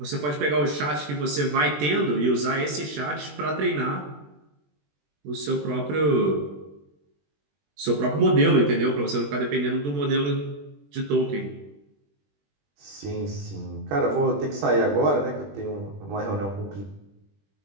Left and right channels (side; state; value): left; late; 20 ms